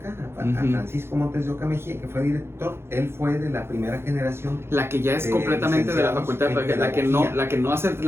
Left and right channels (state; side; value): late; left; 0.12 ms